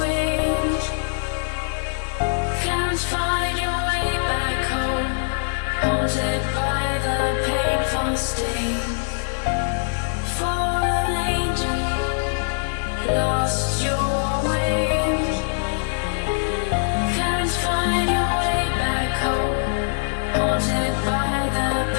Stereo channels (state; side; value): silent; right; digital silence